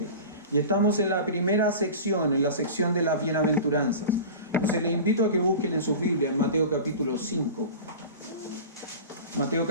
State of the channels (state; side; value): inverted; both; correlation -0.34